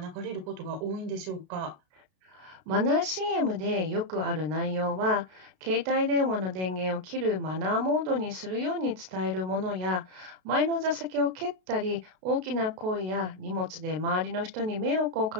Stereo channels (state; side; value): late; left; 32 ms